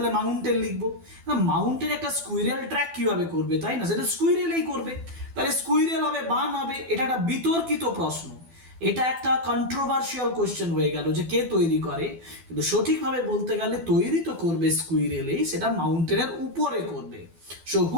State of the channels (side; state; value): left; late; 12 ms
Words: মাউন্টেন লিখবো। মাউন্টেন একটা স্কুইরেল ট্র্যাক কিভাবে করবে, তাই না? সেটা স্কুইরেলই করবে, তাহলে স্কুইরেল হবে বান হবে। এটা একটা বিতর্কিত প্রশ্ন, এটা একটা কন্ট্রোভার্সিয়াল কোশ্চেন হয়ে গেল যে কে তৈরি করে, কিন্তু সঠিকভাবে বলতে গেলে তৈরি তো করবে স্কুইরেলেই, সেটা মাউন্টেনের উপরে করবে। So